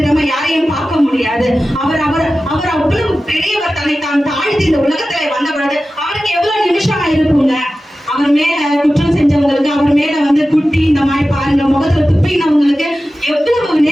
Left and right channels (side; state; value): both; normal; correlation 0.95